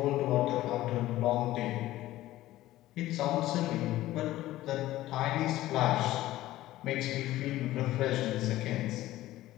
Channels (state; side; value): quieter; right; 15.6 dB